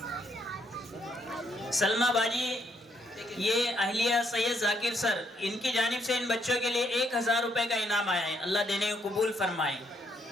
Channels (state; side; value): normal; both; correlation 0.73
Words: सलमा बाजी ये अहलिया सैयद जाकिर सर इनकी जानिब से इन बच्चों के लिए 1000 रुपए का इनाम आया है। अल्लाह देने को कबूल फरमाए।